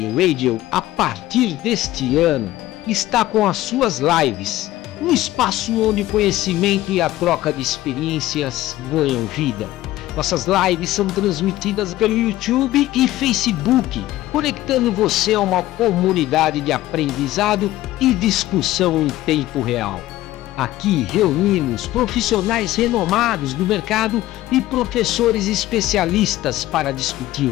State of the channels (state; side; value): quieter; right; 15.7 dB